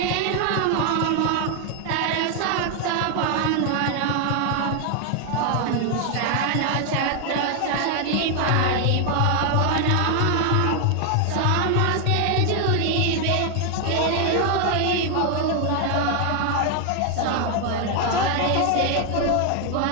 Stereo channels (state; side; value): different; both; correlation 0.00